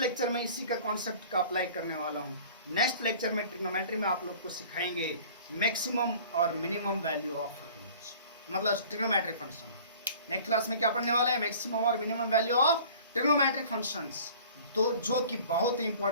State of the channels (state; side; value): inverted; both; correlation -0.47